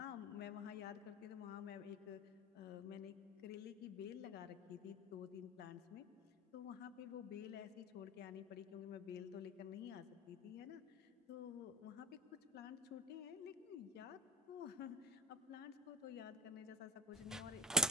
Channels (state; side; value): normal; both; correlation 0.28